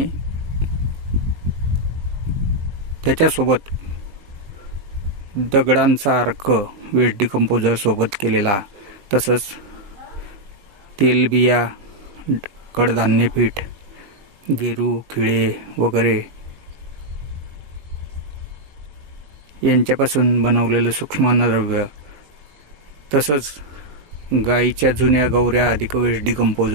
त्याच्यासोबत दगडांचा अर्क वेस्ट डिकंपोजर सोबत केलेला, तसंच तेलबिया, कडधान्य पीठ, गेरू, खिळे वगैरे यांच्यापासून बनवलेलं सूक्ष्म अन्नद्रव्य, तसंच गाईच्या जुन्या गवऱ्या अधिक वेस्ट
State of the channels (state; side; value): late; left; 20 ms